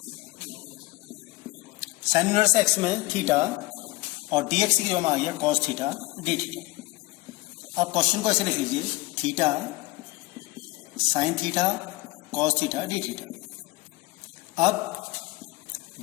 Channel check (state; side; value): quieter; right; 20.4 dB